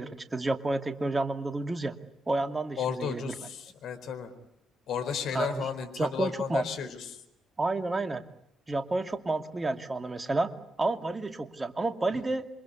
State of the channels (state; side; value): normal; both; correlation 0.85